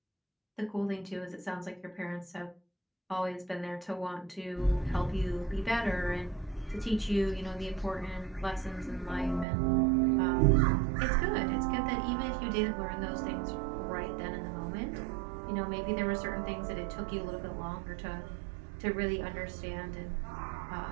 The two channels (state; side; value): drops out; left; at 9.5 s